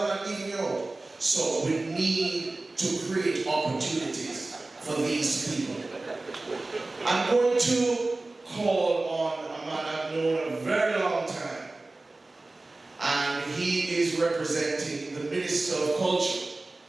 not leaving you out. So we need to create opportunities for these people. I'm going to call on a man I've known a very long time. And he is representing the Minister of Culture.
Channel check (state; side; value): quieter; left; 3.1 dB